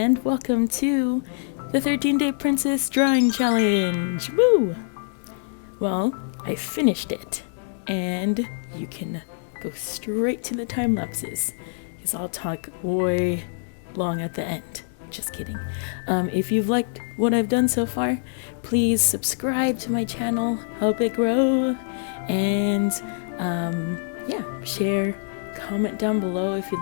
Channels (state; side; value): silent; right; digital silence